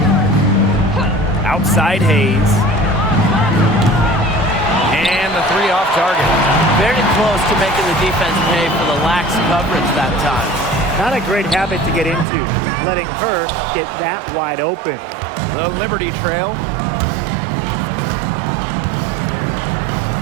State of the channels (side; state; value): left; drops out; at 12.2 s